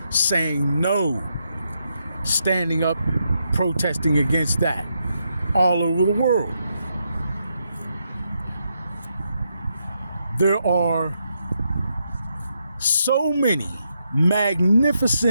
saying no, standing up, protesting against that all over the world. There are so many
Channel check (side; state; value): both; inverted; correlation -0.81